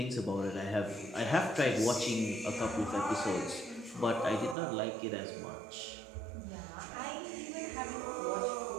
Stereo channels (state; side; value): drops out; left; at 4.5 s